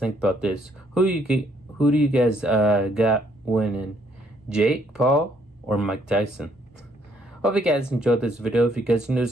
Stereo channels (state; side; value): normal; both; correlation 0.68